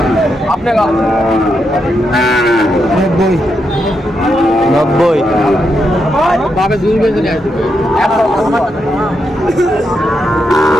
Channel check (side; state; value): both; normal; correlation 0.82